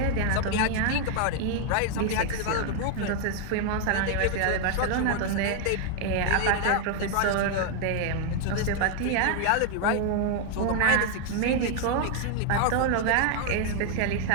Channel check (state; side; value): different; both; correlation 0.00